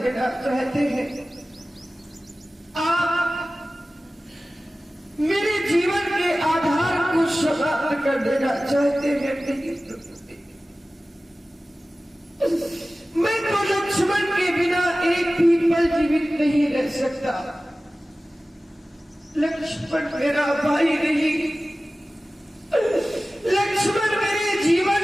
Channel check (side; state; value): both; normal; correlation 0.96